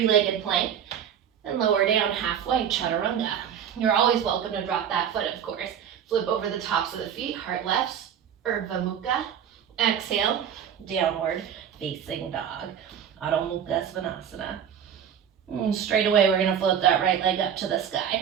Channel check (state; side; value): quieter; left; 8.7 dB